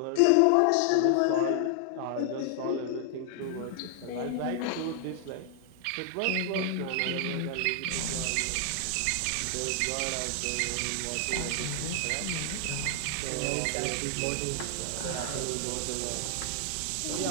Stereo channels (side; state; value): both; different; correlation 0.00